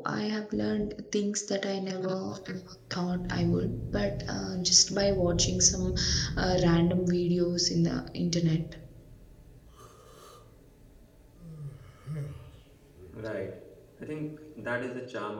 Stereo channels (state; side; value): identical; both; correlation 1.00